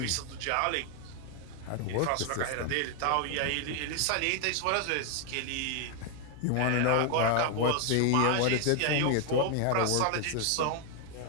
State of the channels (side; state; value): both; different; correlation 0.00